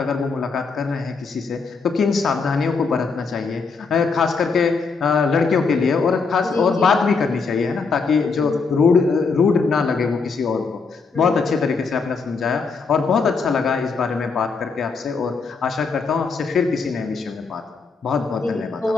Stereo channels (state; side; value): quieter; right; 4.7 dB